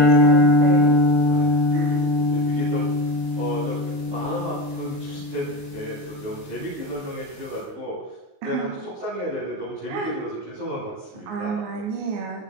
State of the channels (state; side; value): late; left; 19 ms